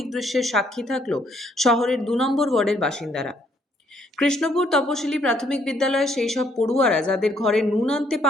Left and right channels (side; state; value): both; normal; correlation 0.68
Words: দৃশ্যের সাক্ষী থাকল শহরের ২ নম্বর ওয়ার্ডের বাসিন্দারা। কৃষ্ণপুর তপশিলি প্রাথমিক বিদ্যালয়ে সেই সব পড়ুয়ারা যাদের ঘরে নুন আনতে